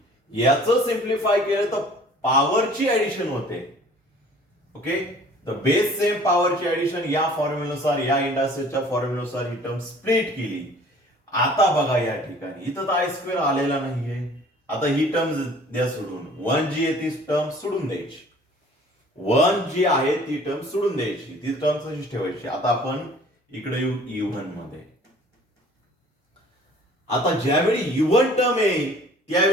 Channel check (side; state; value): both; normal; correlation 0.51